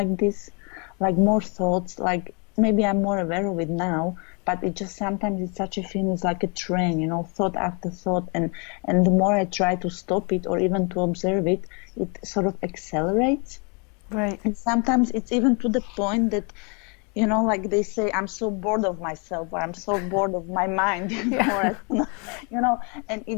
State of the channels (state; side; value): quieter; right; 34.5 dB